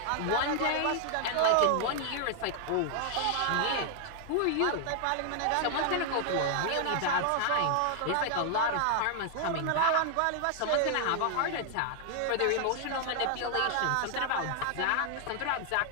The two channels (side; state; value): both; different; correlation 0.00